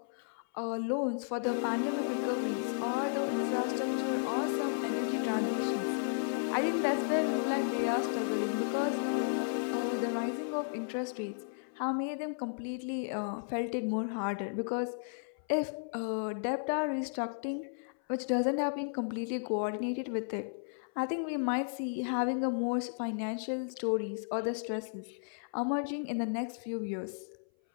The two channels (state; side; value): silent; right; 55 dB below the other